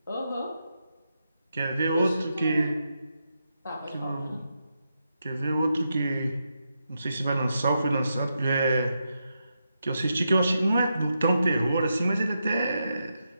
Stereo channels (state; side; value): inverted; both; correlation -0.85